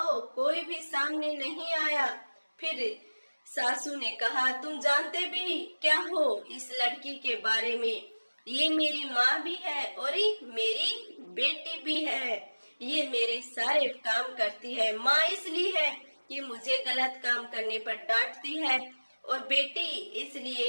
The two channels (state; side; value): inverted; both; correlation -1.00